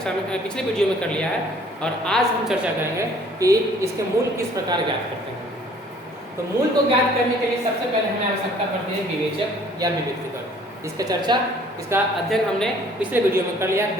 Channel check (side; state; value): both; normal; correlation 0.56